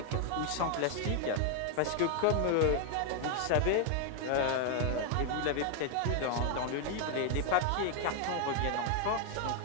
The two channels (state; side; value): different; both; correlation 0.00